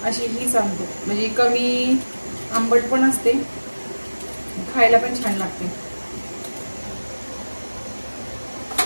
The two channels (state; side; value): inverted; both; correlation -1.00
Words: अशी ही सांगतो, म्हणजे कमी आंबट पण असते, खायला पण छान लागते.